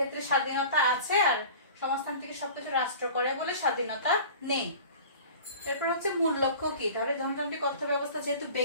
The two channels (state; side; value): inverted; both; correlation -0.40